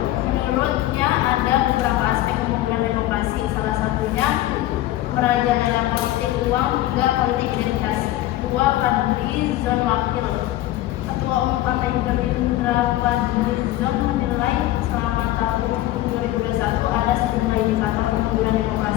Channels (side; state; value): right; quieter; 15.2 dB